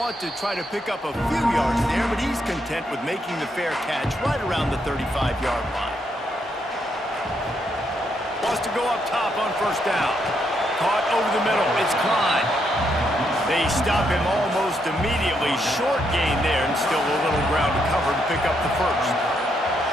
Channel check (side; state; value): both; normal; correlation 0.77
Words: to try to pick up a few yards there, but he's content with making the fair catch right around the 35-yard line. Wants to go up top on first down. Caught over the middle. It's Klein. They stop him almost immediately. Short gain there, and still a little ground to cover to pick up the first.